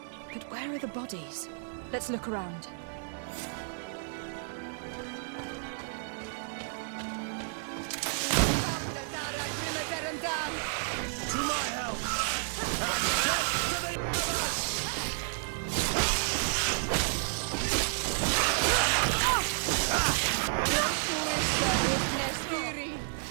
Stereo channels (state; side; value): silent; left; digital silence